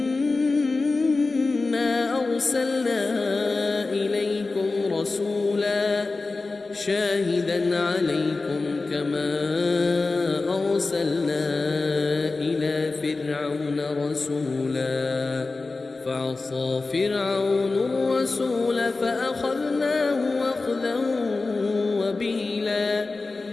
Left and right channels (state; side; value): quieter; right; 3.6 dB